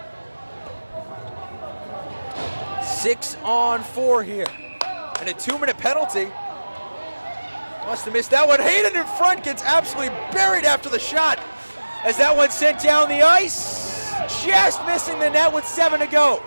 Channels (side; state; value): both; inverted; correlation -1.00